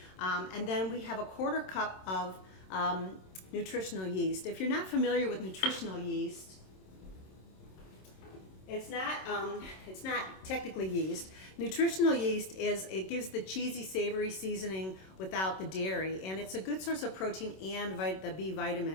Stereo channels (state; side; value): late; right; 27 ms